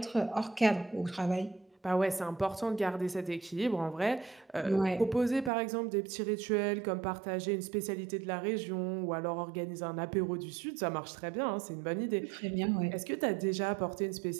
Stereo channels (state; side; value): drops out; left; at 5.5 s